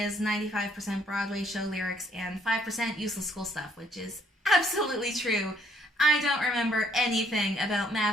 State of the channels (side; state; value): both; normal; correlation 0.67